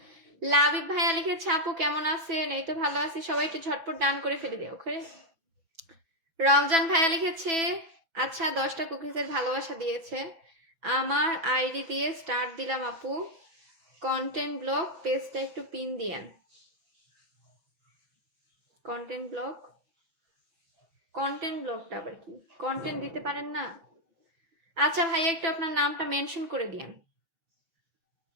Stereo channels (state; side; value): late; left; 6.0 ms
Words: লাবিব ভাইয়া লিখেছে আপু কেমন আছেন, এই তো ভালো আছি। সবাই একটু ঝটপট ডান করে ফেলে দিও। ওকে, রমজান ভাইয়া লিখেছে আচ্ছা 10টা কুকিজের ভালোবাসা দিয়েছে। আমার আইডি দিয়ে স্টার্ট দিলাম আপু, কন্টেন্ট ব্লগ পেজটা একটু পিন দিয়েন। কন্টেন্ট ব্লগ, কন্টেন্ট ব্লগটা আবার কি? কন্টেন্ট দিতে পারেন না? আচ্ছা ভাইয়া একটু আপনার নামটা মেনশন করে দিয়েন।